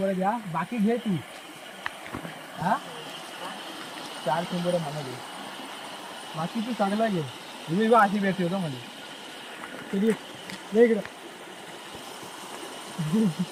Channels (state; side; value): identical; both; correlation 1.00